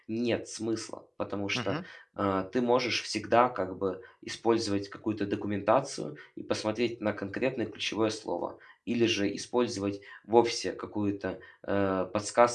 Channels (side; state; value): both; identical; correlation 1.00